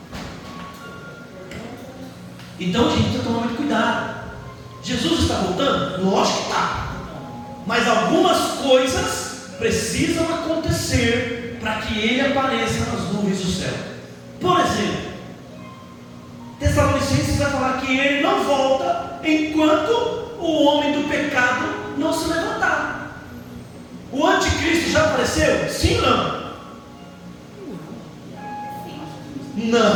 Então, gente, precisa tomar muito cuidado. Jesus está voltando? Lógico que está. Mas algumas coisas precisam acontecer para que Ele apareça nas nuvens do céu. Por exemplo, Tessalonicenses vai falar que Ele não volta enquanto o homem do pecado não se levantar. O anticristo já apareceu? Sim ou não?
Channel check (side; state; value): both; identical; correlation 1.00